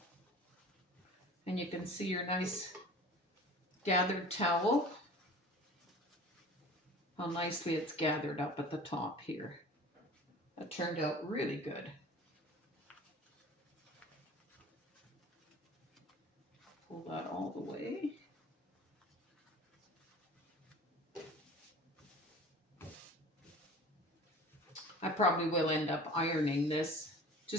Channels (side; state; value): both; normal; correlation 0.42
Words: And you can see your nice gathered towel. How nicely it's gathered up at the top here. That turned out really good. Pull that all the way. I probably will end up ironing this